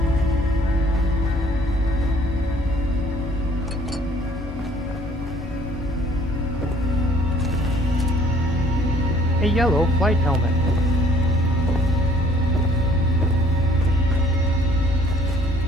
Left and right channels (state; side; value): normal; both; correlation 0.58